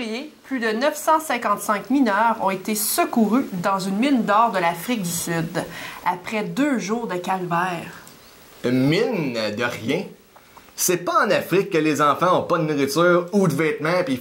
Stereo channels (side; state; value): both; identical; correlation 1.00